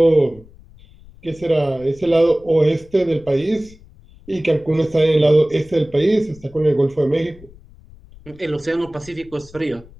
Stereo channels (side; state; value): left; noise; rumble, 23 dB below the sound